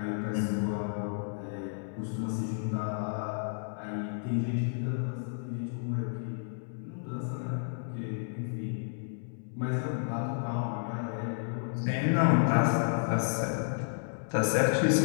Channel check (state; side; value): silent; right; digital silence